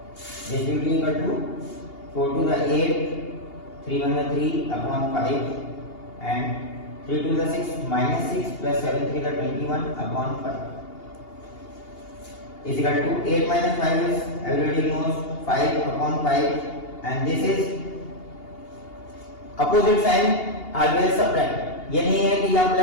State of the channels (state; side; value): late; right; 2.8 ms